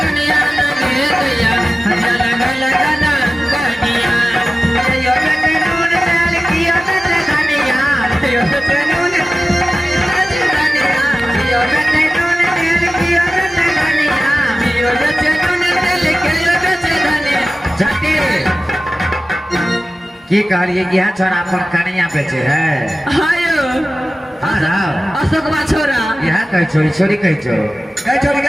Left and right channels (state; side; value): normal; both; correlation 0.95